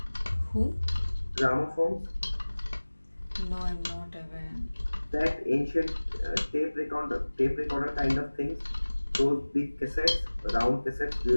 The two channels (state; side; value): inverted; both; correlation -1.00